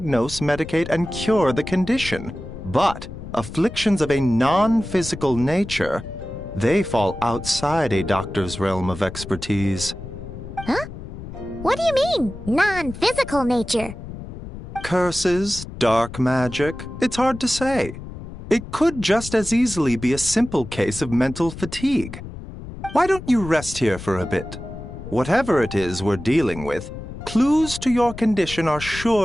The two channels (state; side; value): noise; left; rumble, 11 dB below the sound